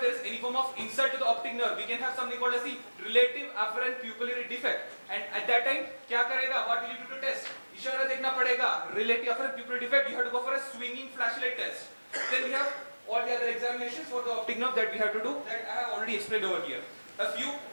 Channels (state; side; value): inverted; both; correlation -1.00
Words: there is any form of insult to the optic nerve, we can have something called as the relative afferent pupillary defect. And at that time, क्या करेगा? What will you do to test? इशारा देखना पड़ेगा. Relative afferent pupillary defect, you have to go for a swinging flashlight test. Then we have all the other examinations for the optic nerve that we have to do that I have already explained over here.